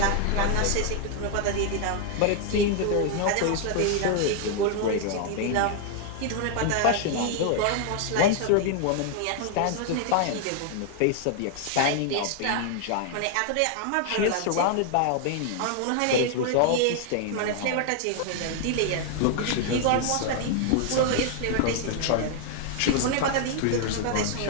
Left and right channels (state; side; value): different; both; correlation 0.00